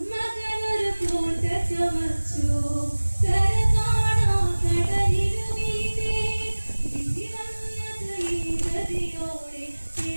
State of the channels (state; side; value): inverted; both; correlation -1.00